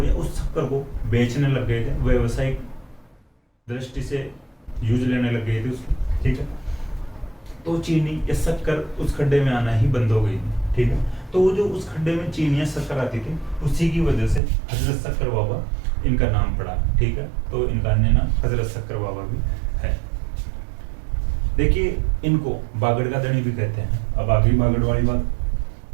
या उस शक्कर को बेचने लग गए थे, व्यवसायिक दृष्टि से यूज लेने लग गए थे उसको। ठीक है, तो चीनी या शक्कर उस खड्डे में आना ही बंद हो गई। ठीक है, तो वो जो उस खड्डे में चीनी या शक्कर आती थी, उसी की वजह से हजरत शक्कर बाबा इनका नाम पड़ा। ठीक है, तो इनका अन्य नाम हजरत शक्कर बाबा भी है। देखिए इनको बागड़ का धनी भी कहते हैं। अब आगे बागड़ वाली बात।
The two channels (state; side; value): drops out; left; at 14.4 s